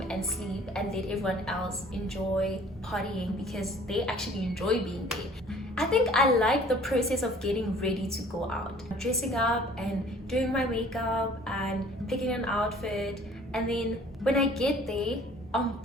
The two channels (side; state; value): both; normal; correlation 0.52